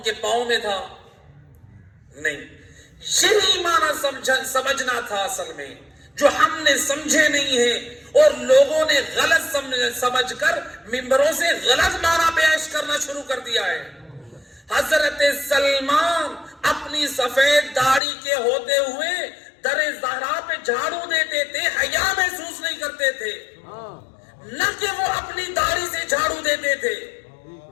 کے پاؤں میں تھا؟ نہیں. یہی معنی سمجھنا تھا اصل میں, جو ہم نے سمجھے نہیں ہے اور لوگوں نے غلط سمجھ کر ممبروں سے غلط معنی پیش کرنا شروع کر دیا ہے. حضرت سلمان اپنی سفید داڑھی کے ہوتے ہوئے در زہرا پہ جھاڑو دیتے تھے, حیا محسوس نہیں کرتے تھے, نہ کہ وہ اپنی داڑھی سے جھاڑو دیتے تھے.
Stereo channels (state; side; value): drops out; right; at 18.0 s